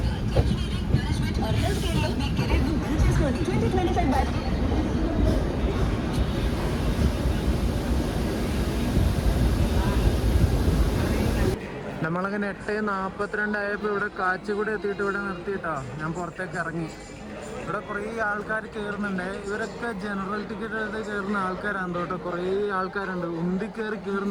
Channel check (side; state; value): both; identical; correlation 1.00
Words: നമ്മളങ്ങനെ 8:42 ആയപ്പോൾ ഇവിടെ കാച്ചിക്കുടി എത്തിയിട്ട് ഇവിടെ നിർത്തിയിട്ടോ ഞാൻ പുറത്തേക്ക് ഇറങ്ങി. ഇവിടെ കുറേ ആൾക്കാർ കയറുന്നുണ്ട്. ഇവരൊക്കെ ജനറൽ ടിക്കറ്റ് എടുത്ത് കയറുന്ന ആൾക്കാരാണ് കേട്ടോ. കുറേ ആൾക്കാരുണ്ട്, ഉന്തി കയറി